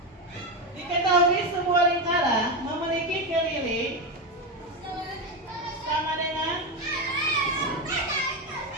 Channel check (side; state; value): both; normal; correlation 0.13